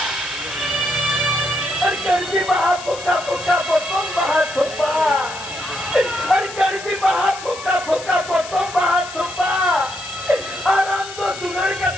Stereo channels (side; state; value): left; noise; hiss, 13 dB below the sound